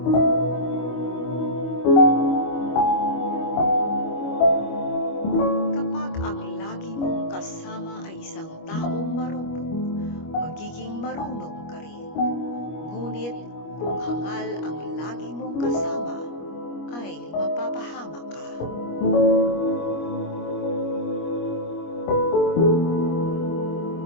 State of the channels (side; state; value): right; late; 25 ms